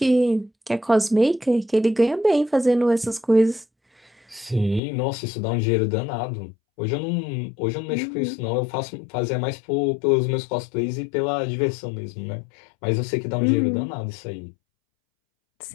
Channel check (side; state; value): right; drops out; at 4.8 s